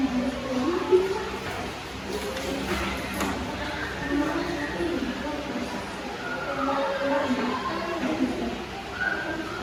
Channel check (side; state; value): both; identical; correlation 1.00